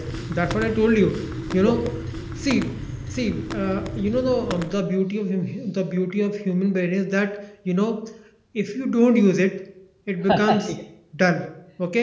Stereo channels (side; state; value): both; identical; correlation 1.00